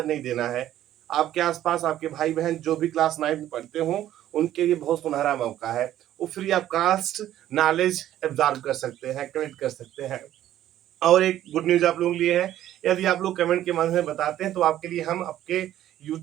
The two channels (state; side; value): quieter; left; 12.5 dB